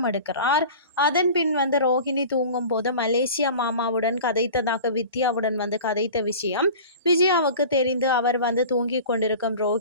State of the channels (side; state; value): both; inverted; correlation -0.38